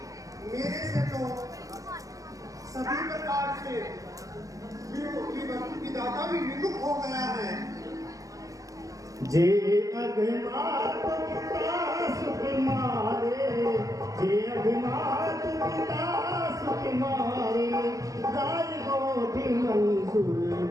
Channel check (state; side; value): late; left; 0.16 ms